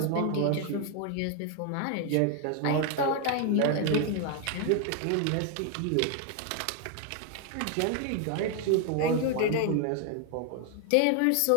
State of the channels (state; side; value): different; both; correlation 0.00